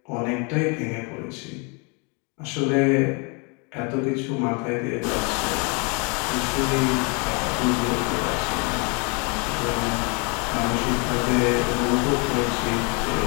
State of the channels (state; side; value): quieter; right; 32.7 dB